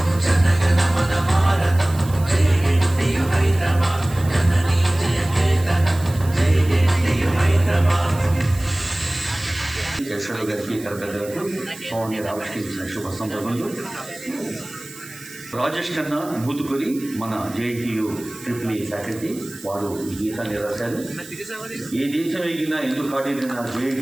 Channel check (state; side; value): noise; right; hiss, 17 dB below the sound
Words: జనగణమన భారతం జేఎన్టీయు హైదరాబాద్ జననీ జయకేతనం జేఎన్టీయు హైదరాబాద్. యశ్వరు గారికి కలెక్టర్ సౌమ్య రామకృష్ణ ఇచ్చిన శుభ సందర్భంలో రాజేష్ కన్నా మూతుకొని మన జేఎన్టీయు ట్రిపుల్ ఫ్యాకల్టీ వారు ఈ గీతాన్ని రాశారు. ఏ దేశం ఎగినా ఎందుకు కాడిన